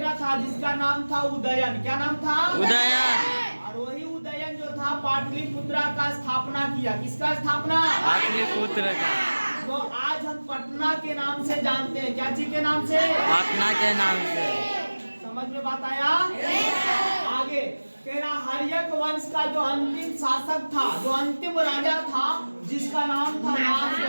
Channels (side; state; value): both; inverted; correlation -1.00